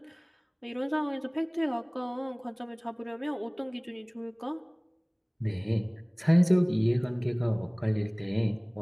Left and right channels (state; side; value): identical; both; correlation 1.00